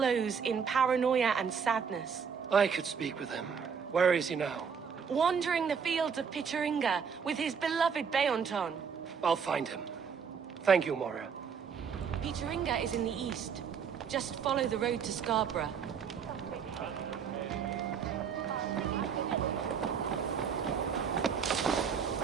in paranoia and sadness. I could speak with him. Where is he now? Wandering the fields of Pittaringa with his beloved Beonton. I'll find him. Thank you, Moira. Pittaringa is in the east. Just follow the road to Scarborough.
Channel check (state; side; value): quieter; left; 6.6 dB